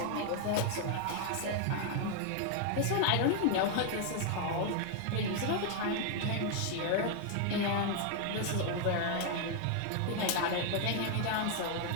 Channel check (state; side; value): different; both; correlation 0.00